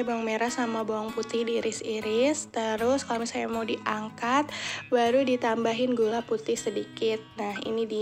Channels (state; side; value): identical; both; correlation 1.00